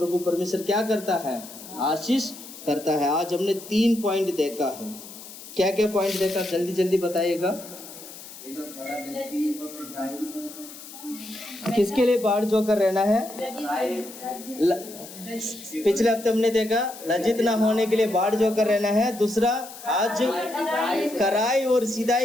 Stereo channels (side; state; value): left; noise; hiss, 15 dB below the sound